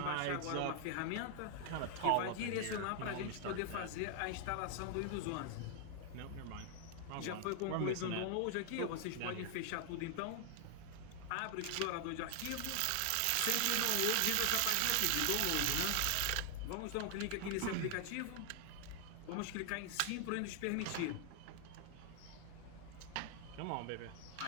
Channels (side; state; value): both; different; correlation 0.00